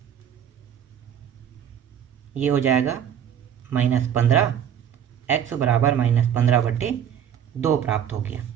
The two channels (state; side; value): quieter; left; 9.1 dB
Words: ये हो जाएगा -15, x बराबर -15/2 प्राप्त हो गया।